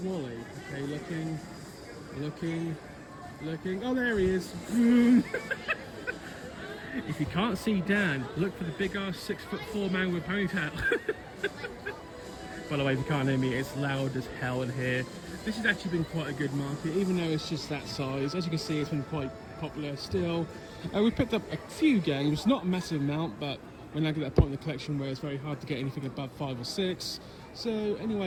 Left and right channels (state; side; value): identical; both; correlation 1.00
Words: Okay, looking. Oh, there he is. If you can't see Dan, look for the big ass 6'4" man with ponytail. By the way, if you can't hear me, it's loud as hell in here. This has actually been quite a good market, even though it's just that size. As you can see, it's been quite popular still. We picked up a few games, not a massive amount, but we're now at that point in the collection where it's very hard to get anything above 5 or 6. So